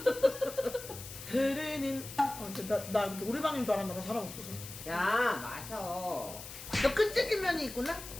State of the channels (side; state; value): left; noise; hiss, 12 dB below the sound